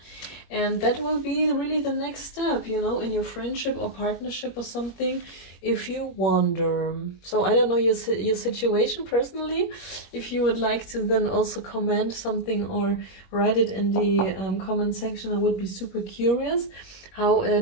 and that will be really the next step, you know, in your friendship or partnership or something, if you wonder. So I don't know your situation personally. If you would like to then also comment something or write it in the comment section, I would be super curious how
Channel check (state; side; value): late; right; 21 ms